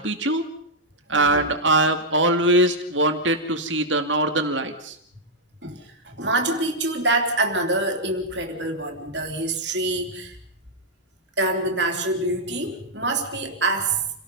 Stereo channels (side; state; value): both; normal; correlation -0.06